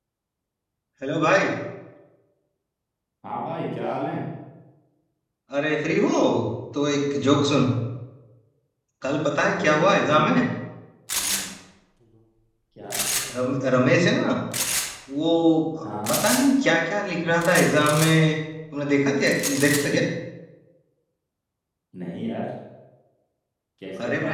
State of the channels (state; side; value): identical; both; correlation 1.00